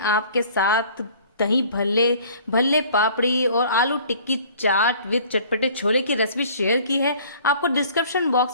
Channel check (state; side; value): inverted; both; correlation -0.51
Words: आपके साथ दही भल्ले, भल्ले पापड़ी और आलू टिक्की चाट विद चटपटे छोले की रेसिपी शेयर की है। आपको डिस्क्रिप्शन